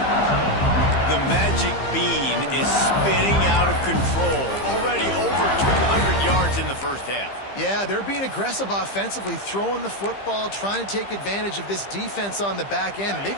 The magic bean is spinning out of control. Already over 200 yards in the first half. Yeah, they're being aggressive offensively, throwing the football, trying to take advantage of this defense on the back end.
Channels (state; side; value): late; right; 15 ms